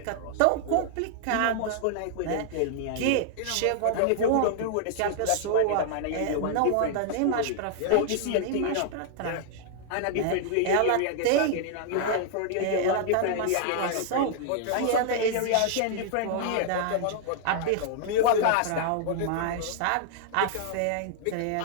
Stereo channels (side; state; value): both; different; correlation -0.01